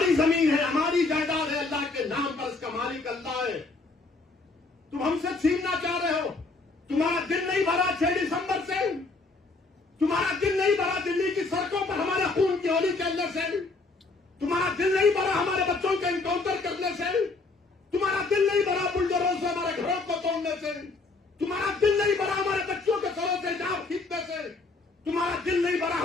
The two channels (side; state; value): right; quieter; 3.6 dB